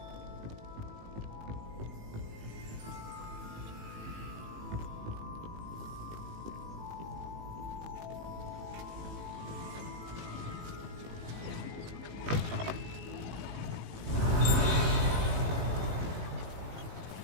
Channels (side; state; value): left; late; 18 ms